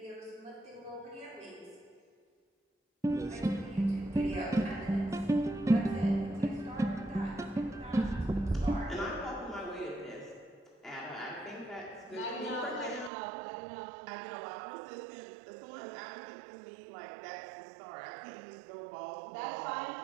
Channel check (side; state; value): left; drops out; at 13.1 s